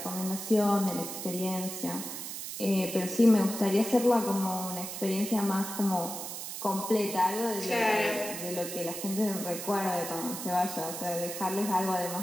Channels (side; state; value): right; noise; hiss, 7 dB below the sound